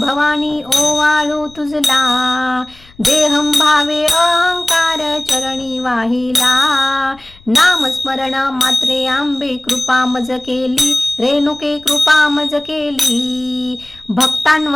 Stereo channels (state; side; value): noise; left; rumble, 26 dB below the sound